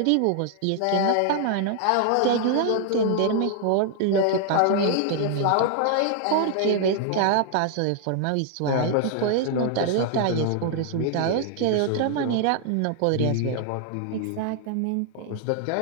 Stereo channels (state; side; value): different; both; correlation 0.00